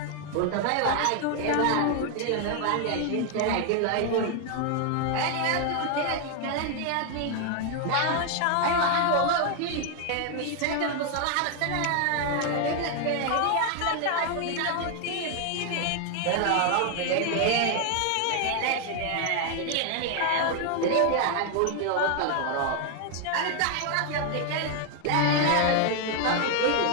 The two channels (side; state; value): both; different; correlation 0.00